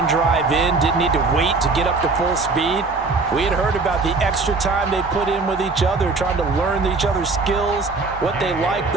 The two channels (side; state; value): left; quieter; 3.9 dB